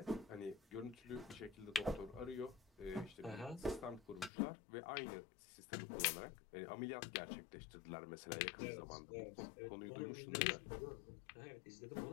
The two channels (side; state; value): right; drops out; at 4.3 s